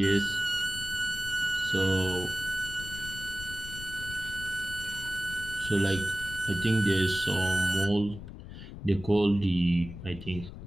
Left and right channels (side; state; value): left; noise; rumble, 12 dB below the sound